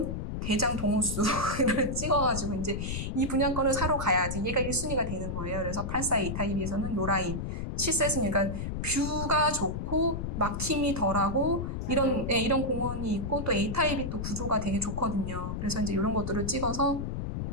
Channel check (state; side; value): noise; left; rumble, 4 dB below the sound